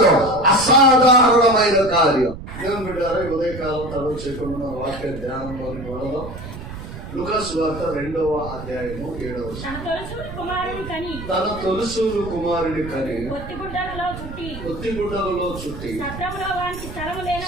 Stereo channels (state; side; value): noise; right; rumble, 11 dB below the sound